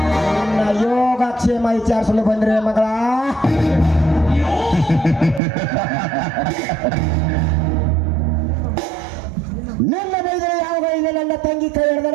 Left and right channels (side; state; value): left; drops out; at 5.4 s